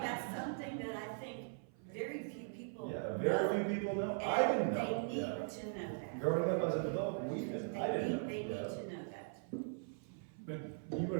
that's something that I think very few people Yeah, very few people we They didn't, I didn't know. need Yeah. to know that. But you were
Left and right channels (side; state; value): left; silent; 51 dB below the other